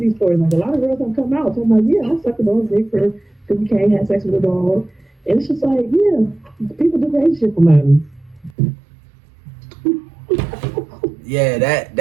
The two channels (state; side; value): drops out; left; at 8.5 s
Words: these stories. Like, a lot of girls have come out talking about, yeah, I sucked a dog's dick for 50K, had sex with a dog. And it's just like, yeah, people do crazy shit for money. Yeah,